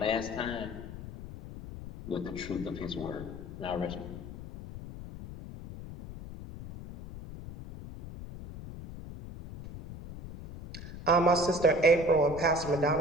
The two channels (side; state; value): left; noise; rumble, 12 dB below the sound